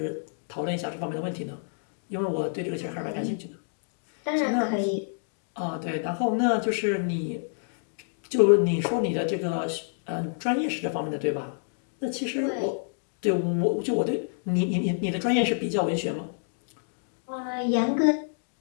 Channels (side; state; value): right; silent; digital silence